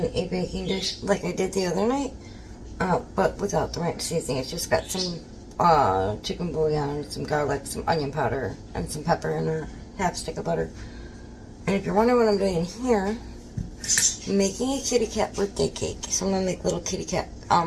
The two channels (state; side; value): identical; both; correlation 1.00